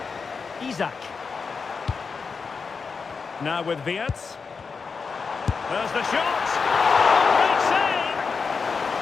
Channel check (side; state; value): right; quieter; 5.1 dB